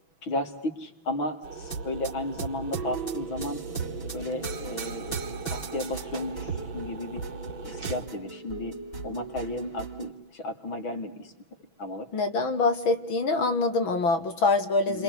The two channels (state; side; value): late; right; 6.1 ms